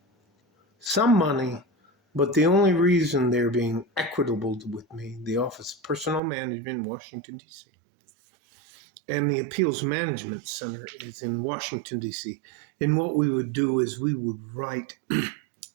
some money, but the only reason they're being equitable with me, the Office of Personnel Management in Washington, D.C., and the Appeals Management Center is in Washington, D.C. And what we would do is we would write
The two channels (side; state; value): left; drops out; at 6.2 s